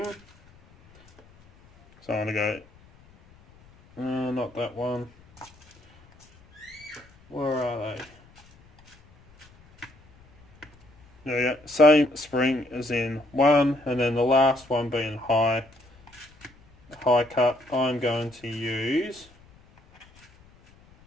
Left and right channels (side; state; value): left; noise; rumble, 28 dB below the sound